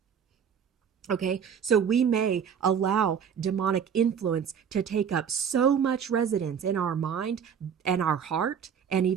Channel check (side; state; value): left; quieter; 7.6 dB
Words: Okay, so we may allow demonic influence to take up so much residence in our mind and our heart and